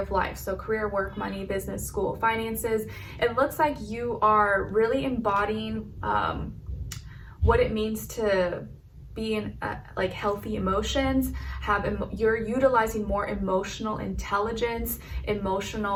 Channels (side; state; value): both; identical; correlation 1.00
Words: of life? So career, work, money, business, school, finances. It looks like you are really embodying what it means to be in like healthy emotions, you're utilizing more emotional intelligence,